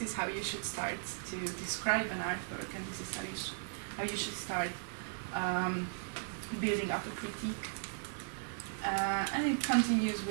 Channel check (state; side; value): silent; left; digital silence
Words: is how you should start to describe an artwork, and this is how you should start building up a critique. And it continues